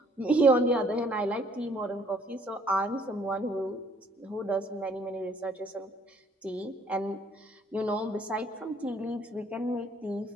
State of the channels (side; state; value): both; normal; correlation 0.62